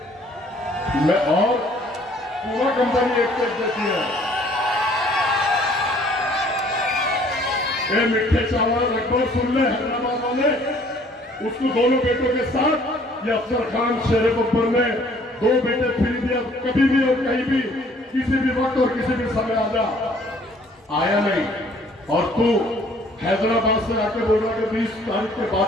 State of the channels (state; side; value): normal; both; correlation 0.58